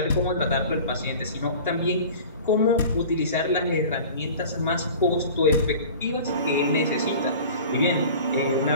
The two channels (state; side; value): inverted; both; correlation -0.41